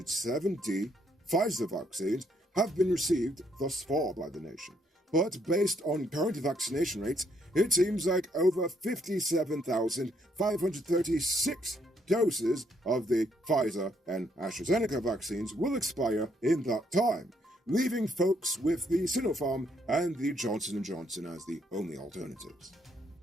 Pfizer vaccines have been received thus far by the nation. But based on current vaccination rates, it seems like over 57,536 doses of the Pfizer and AstraZeneca vaccines will expire in that time, leaving folks with the Sinopharm and the Johnson & Johnson as the only alternatives.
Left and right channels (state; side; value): normal; both; correlation 0.71